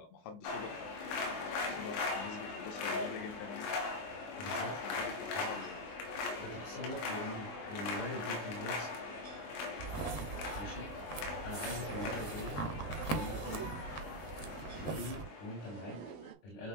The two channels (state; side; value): late; right; 20 ms